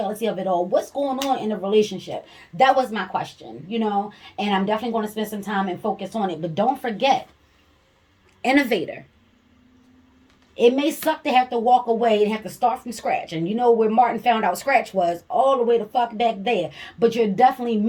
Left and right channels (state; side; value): identical; both; correlation 1.00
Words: of it all. What's going on in a relationship? That was my question, and I'm definitely going to spend some time and focus on it. But don't forget, innovator. It may suck to have to walk away and have to start from scratch. And where Martin found out scratch was? All the way the fuck back there. But you're definitely